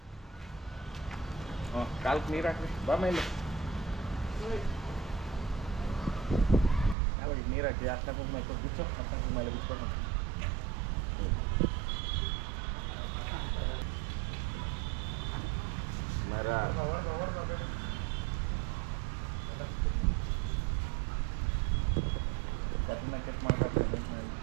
ಕಾಲಕ್ಕೆ ನೀರು ಹಾಕ್ರಿ. ಬಾ ಮೇಲೆ ಯಾವಾಗ ನೀರು ಹಾಕಿ ಅಷ್ಟ ಕುಂಕುಮ ಬಿಚ್ಚು ಅಷ್ಟ ಕುಂಕುಮ ಎಲ್ಲ ಬಿಚ್ಕೊಂಡು ಮರ ಕಟ್ನ ಕಟ್ ಮಾಡ್ಬೇಕು.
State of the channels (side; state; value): left; drops out; at 7.0 s